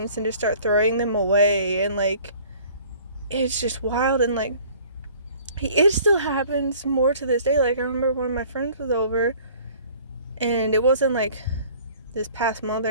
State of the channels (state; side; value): inverted; both; correlation -0.51